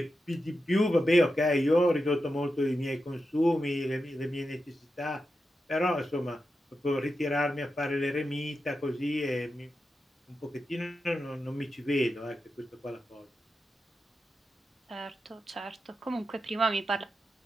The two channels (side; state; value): both; normal; correlation 0.89